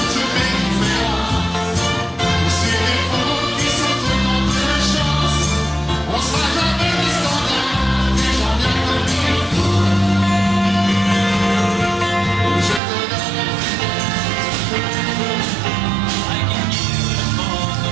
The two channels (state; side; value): drops out; left; at 12.8 s